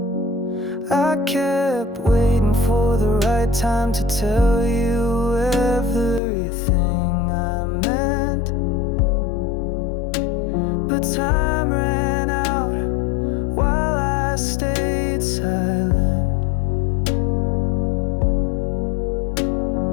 I kept waiting for the right time to tell you everything I meant, but time ran out while I stayed silent.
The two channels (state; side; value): drops out; right; at 6.2 s